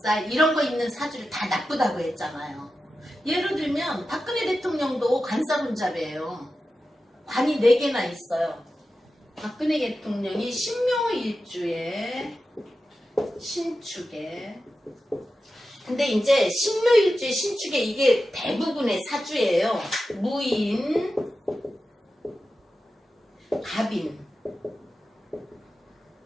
이런 거 있는 사주를 다 나쁘다고 했잖아요. 예를 들면 박근혜 대통령도 관살운자래요. 관이 4개나 있어요. 박근혜 대통령이 신묘일주에 신축에. 근데 이제 신묘일주에 신축에 이게 대부분의 사주예요. 무인, 갑인.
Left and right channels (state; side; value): normal; both; correlation 0.92